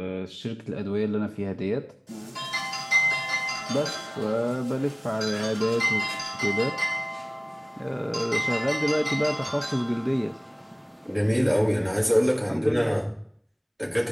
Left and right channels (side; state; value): both; identical; correlation 1.00